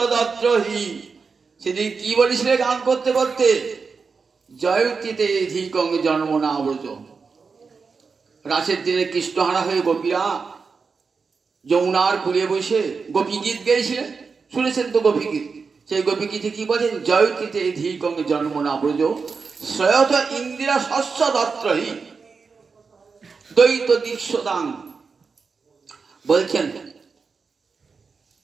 দত্রহি। সেদিন কি বলেছিলে গান করতে করতে? জয়তিতে ধিকং জন্ম না ব্রজ। রাসের দিনে কৃষ্ণহারা হয়ে গোপীরা যমুনার কুলে বসে গোপী গীত গেয়েছিলেন, শুনেছেন তো গোপী গীত? সেই গোপী গীতে কি বলেন? জয়তিতে ধিকং জন্ম না ব্রজ শ্রয়ত ইন্দিরা শস্য দত্রহি দ্বৈত দীক্ষদাং। বলছেন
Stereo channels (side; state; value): left; quieter; 5.0 dB